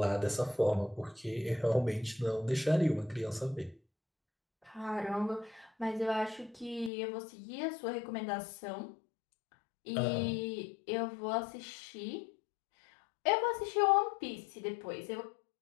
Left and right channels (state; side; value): drops out; right; at 6.9 s